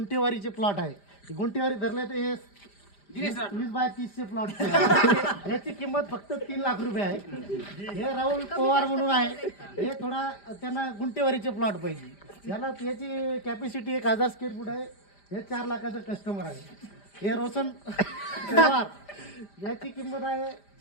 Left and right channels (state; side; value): late; right; 5.0 ms